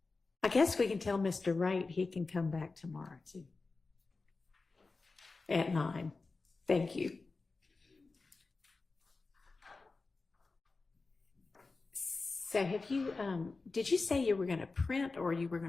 I guess we can tell Mr. Wright he can come back tomorrow too. At 9. Thank you. So have you, did you say you were going to print or you were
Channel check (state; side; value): quieter; right; 3.8 dB